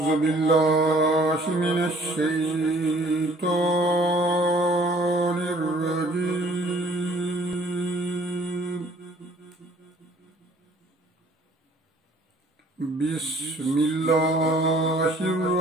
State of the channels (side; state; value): both; normal; correlation 0.57